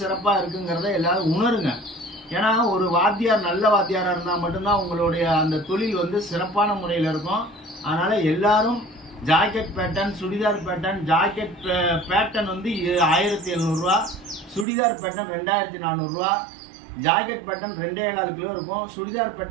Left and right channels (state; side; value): drops out; left; at 14.7 s